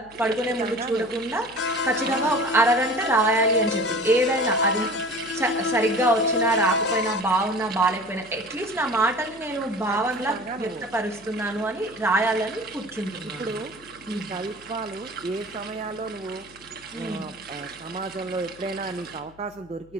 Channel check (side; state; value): left; noise; hum, 26 dB below the sound